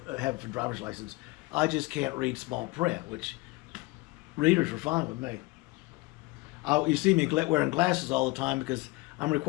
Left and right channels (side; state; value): right; quieter; 22.6 dB